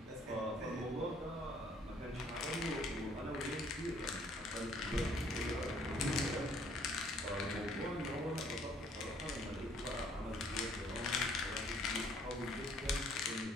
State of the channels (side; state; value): both; normal; correlation 0.61